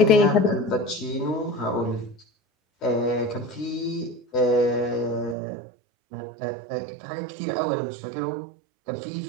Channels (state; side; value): drops out; left; at 5.4 s